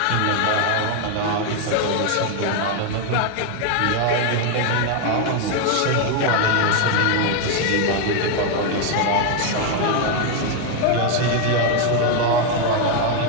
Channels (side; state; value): both; different; correlation 0.01